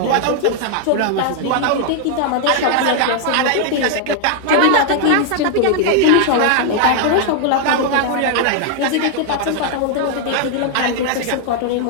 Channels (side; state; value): both; different; correlation 0.00